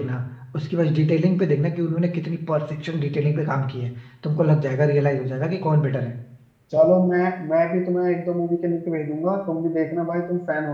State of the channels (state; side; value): identical; both; correlation 1.00